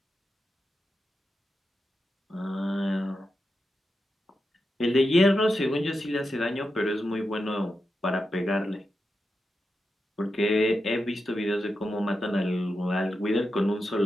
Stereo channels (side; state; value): both; normal; correlation 0.88